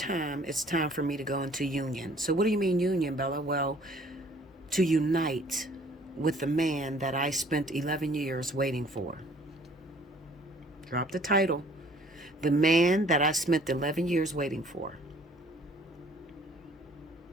it's time for me to go into union. So what do you mean union, Bella? Well, to unite with the man that I spent 11 years waiting for. Drop the title. The man that I spent 11 years waiting for.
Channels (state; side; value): normal; both; correlation 0.56